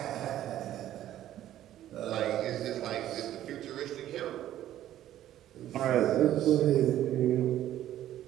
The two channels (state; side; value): quieter; left; 12.5 dB